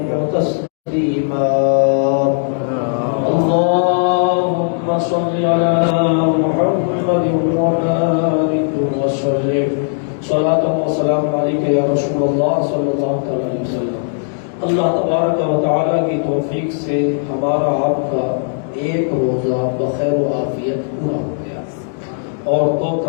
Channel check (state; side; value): silent; right; digital silence